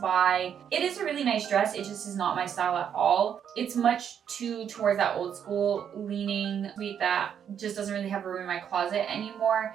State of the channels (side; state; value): left; quieter; 8.5 dB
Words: It is a really nice dress, it just is not my style at all. It's much too towards that old school leaning sweet that just doesn't really have room in my closet